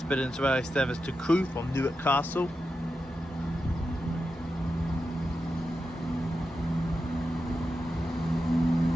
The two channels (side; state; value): both; normal; correlation 0.89